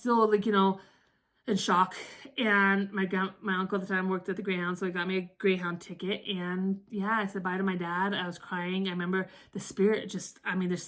in shock. And my uncle at the time worked at the Greyhound, so he got me a Greyhound ticket. And yeah, I said bye to my dad. I was crying. I remember the Spirit there's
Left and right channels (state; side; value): identical; both; correlation 1.00